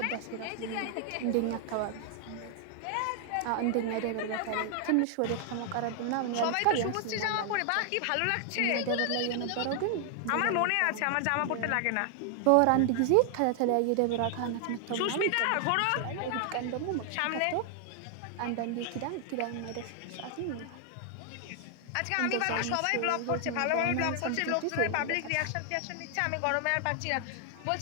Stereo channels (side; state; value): both; different; correlation 0.00